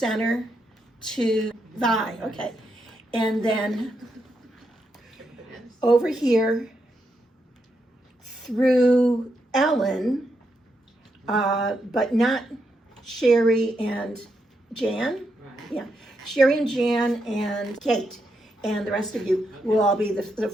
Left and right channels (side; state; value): both; normal; correlation 0.82